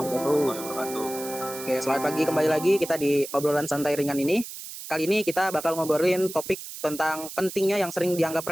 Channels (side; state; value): right; noise; hiss, 11 dB below the sound